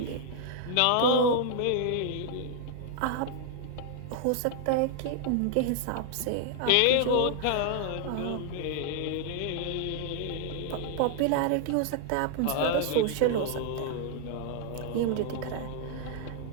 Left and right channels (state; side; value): different; both; correlation 0.00